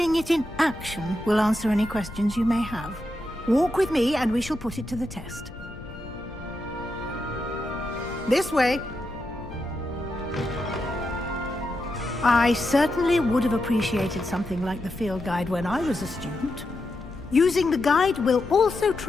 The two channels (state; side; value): noise; left; rumble, 14 dB below the sound